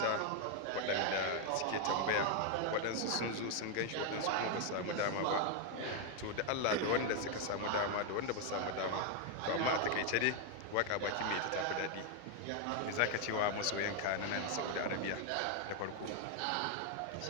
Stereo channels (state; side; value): different; both; correlation 0.01